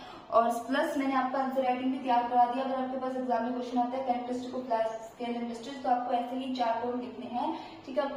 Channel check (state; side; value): identical; both; correlation 1.00